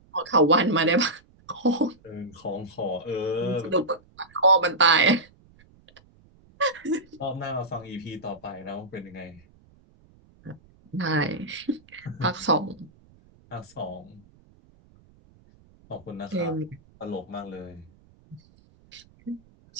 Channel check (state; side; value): noise; right; rumble, 28 dB below the sound